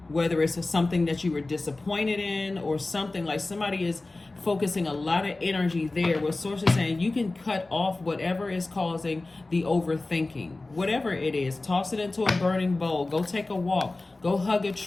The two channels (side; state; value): right; quieter; 3.1 dB